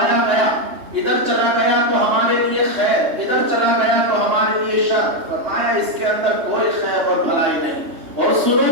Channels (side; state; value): left; late; 3.1 ms